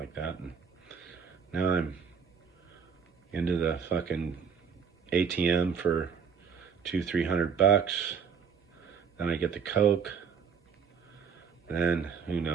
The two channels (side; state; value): left; quieter; 6.7 dB